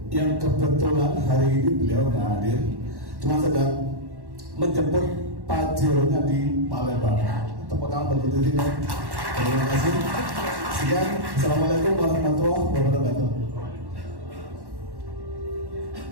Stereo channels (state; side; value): late; left; 1.1 ms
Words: yang kebetulan hari ini beliau nggak hadir. Cuma sedang menjemput Pajeronya di Palembang. Tepuk tangan bagi diri ya. Terima kasih. Sekian. Assalamualaikum warahmatullahi wabarakatuh.